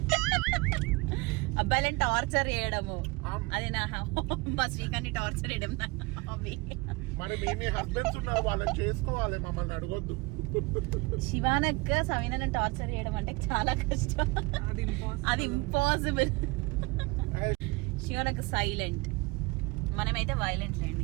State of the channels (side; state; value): left; quieter; 25.2 dB